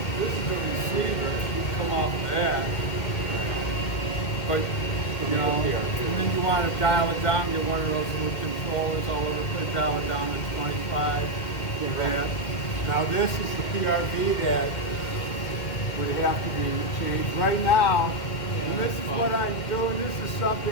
this is the receiver, you come off of that. But, you know, and then you want to dial it down, get one of those little controllers all over the place, dial it down to 25, get that. Now this is the PRV that would have to be changed right now. And this is what I'm doing, this is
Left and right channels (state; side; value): late; right; 2.1 ms